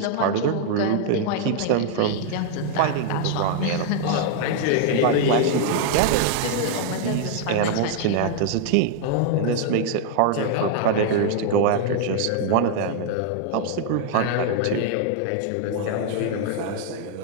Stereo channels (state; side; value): different; both; correlation 0.00